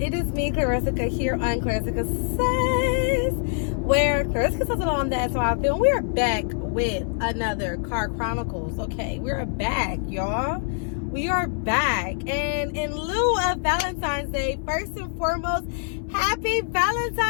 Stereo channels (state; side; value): silent; right; digital silence